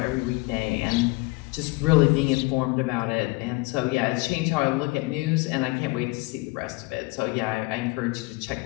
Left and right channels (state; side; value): quieter; right; 24.9 dB